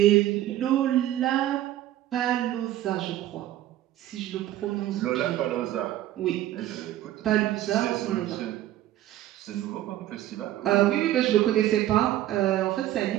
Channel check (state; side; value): quieter; left; 13.6 dB